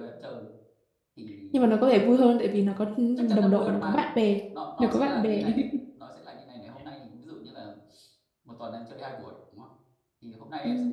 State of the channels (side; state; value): both; identical; correlation 1.00